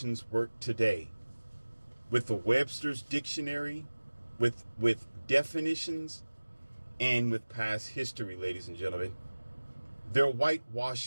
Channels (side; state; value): both; inverted; correlation -1.00